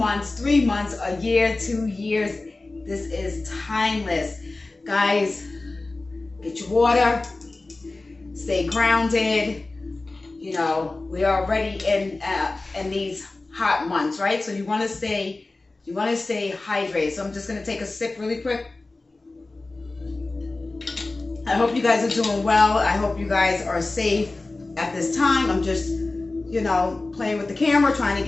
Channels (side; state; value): right; quieter; 3.2 dB